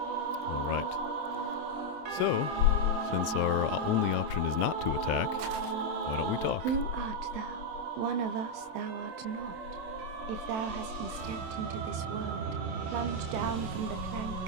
Alright. So, since our only option is not to attack, why don't we talk? Who art thou? One of us thou art not. If thou hast misstepped into this world, plunge down from the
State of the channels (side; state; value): left; late; 27 ms